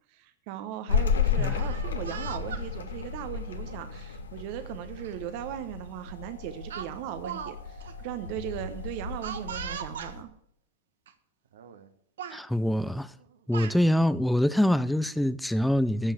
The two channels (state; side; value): normal; both; correlation 0.55